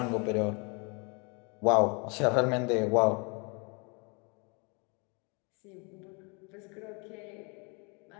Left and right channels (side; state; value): right; quieter; 32.5 dB